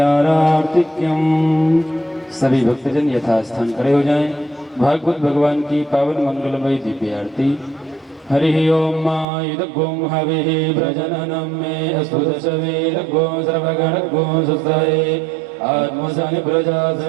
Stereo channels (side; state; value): left; drops out; at 9.2 s